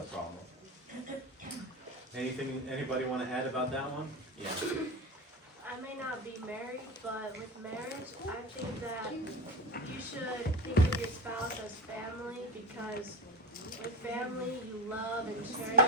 problem. Anybody want to add about that one? Yeah. I may not be married, but with marriage, I think that you should think of your spouse as family, because with family you love and cherish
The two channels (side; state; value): both; normal; correlation 0.23